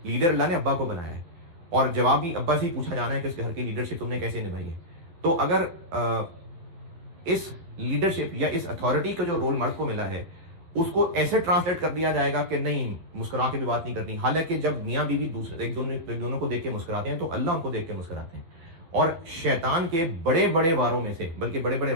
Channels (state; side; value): late; left; 12 ms